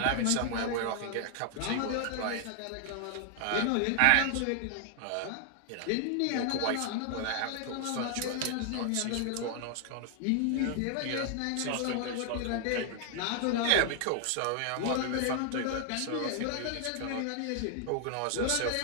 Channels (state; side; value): different; both; correlation 0.00